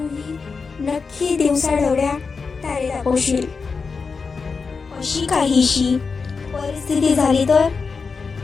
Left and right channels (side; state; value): right; quieter; 4.9 dB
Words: नक्की दिवसाढवळ्या तारे दाखवशील. अशी काहीशी परिस्थिती झाली तर?